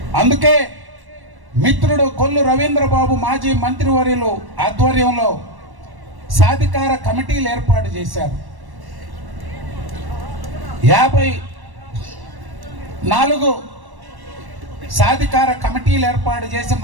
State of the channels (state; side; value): late; left; 1.1 ms